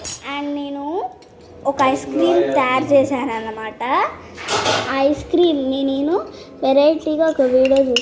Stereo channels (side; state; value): both; identical; correlation 1.00